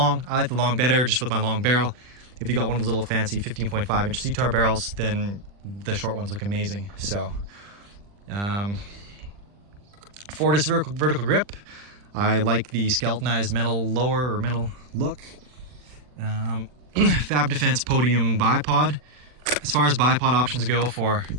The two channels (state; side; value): late; left; 40 ms